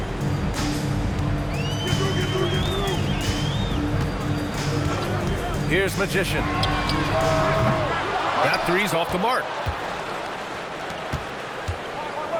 Here's Magician. That three's off the mark.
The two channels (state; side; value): identical; both; correlation 1.00